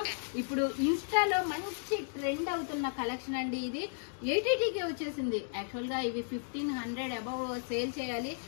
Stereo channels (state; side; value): silent; right; digital silence